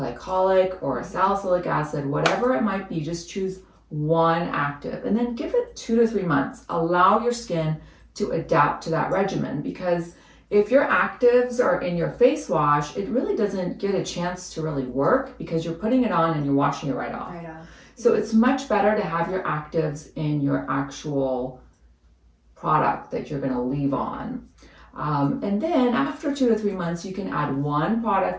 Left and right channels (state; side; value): identical; both; correlation 1.00